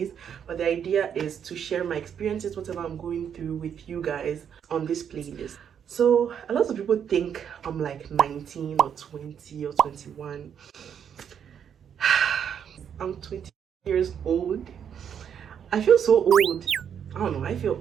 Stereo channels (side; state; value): left; quieter; 8.2 dB